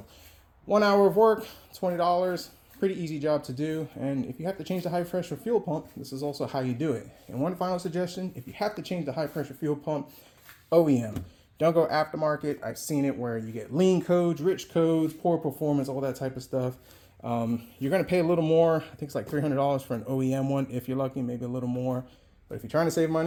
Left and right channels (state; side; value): identical; both; correlation 1.00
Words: 1 hour of work, $20. Pretty easy job to do. And if you have to change the high pressure fuel pump, this is also how you do it. And one final suggestion, if you have to change the high pressure fuel pump, OEM. Don't go aftermarket. I've seen it where you get lean codes, rich codes, poor performance, all that type of stuff. You're going to pay a little more. I think it's like $300 for an OEM one. If you're lucky, maybe a little more. But if you're trying to save